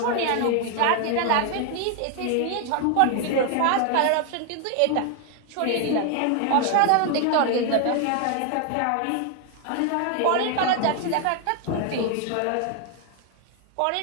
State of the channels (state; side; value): different; both; correlation 0.00